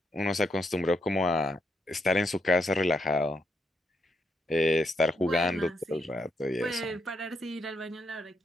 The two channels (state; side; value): normal; both; correlation 0.79